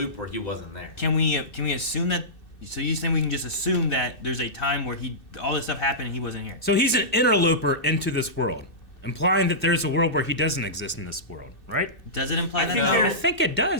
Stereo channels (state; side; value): late; right; 2.6 ms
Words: where he wasn't there. Can we assume that? So you saying we can just assume that there's a time where all this stuff happened and he wasn't here? So he's an interloper into this world, implying that there's a world where he doesn't exist in this world, right? Does it imply I that? think though? there- I think it